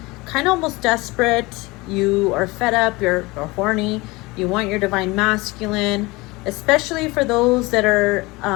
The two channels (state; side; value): quieter; right; 22.9 dB